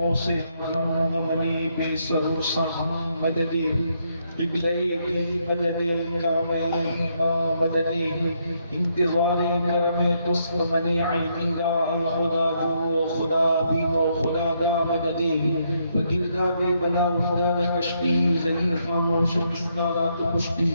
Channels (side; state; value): both; inverted; correlation -0.75